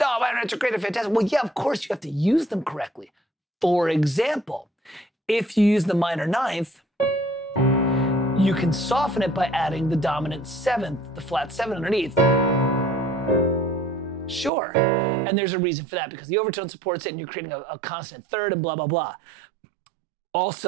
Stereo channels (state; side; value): drops out; left; at 14.5 s